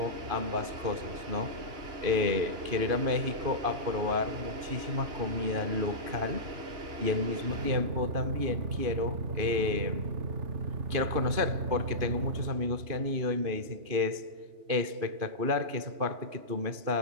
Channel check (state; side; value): late; left; 2.5 ms